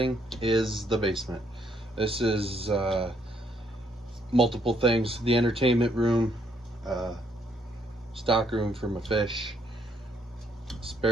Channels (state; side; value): normal; both; correlation 0.71